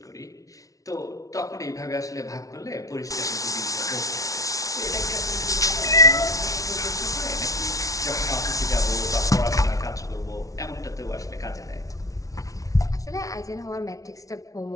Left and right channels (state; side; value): late; right; 0.17 ms